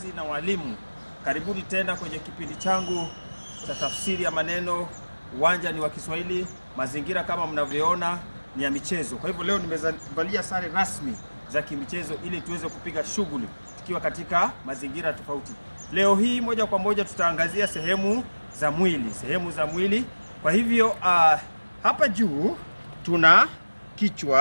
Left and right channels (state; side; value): inverted; both; correlation -1.00